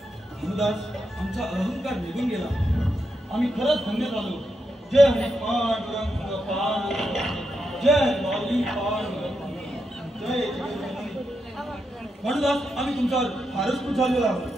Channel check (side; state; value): both; normal; correlation 0.84